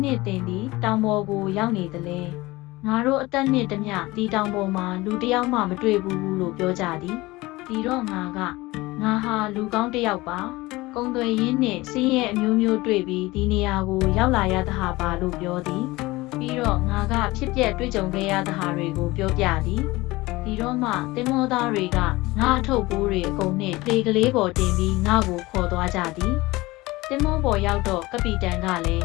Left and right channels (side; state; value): right; quieter; 20.6 dB